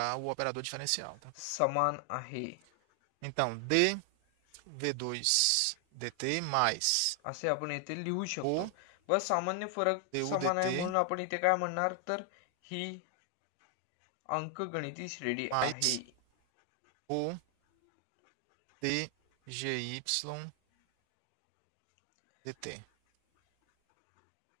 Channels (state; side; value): different; both; correlation 0.00